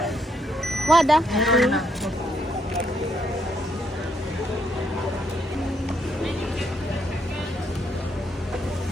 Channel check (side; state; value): both; normal; correlation 0.74